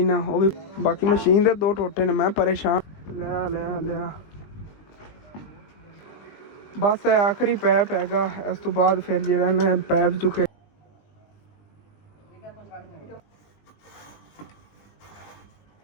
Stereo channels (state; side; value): late; right; 20 ms